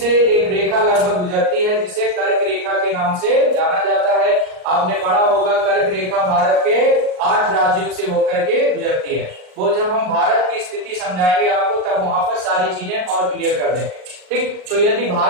एक रेखा लगभग गुजरती है जिसे कर्क रेखा के नाम से जाना जाता है। आपने पढ़ा होगा कर्क रेखा भारत के 8 राज्यों से होकर के गुजरती है। वो जब हम भारत की स्थिति समझाएंगे आपको तब वहां पर सारी चीजें और क्लियर कर देंगे। ठीक, तो यदि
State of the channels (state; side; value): late; left; 38 ms